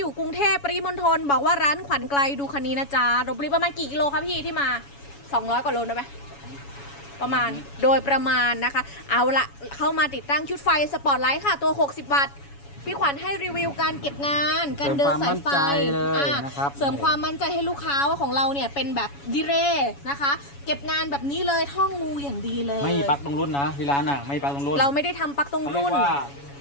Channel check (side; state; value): right; late; 7.1 ms